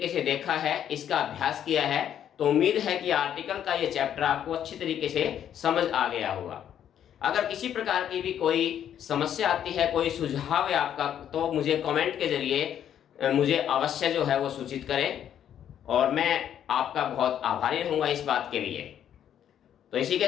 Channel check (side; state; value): right; quieter; 9.8 dB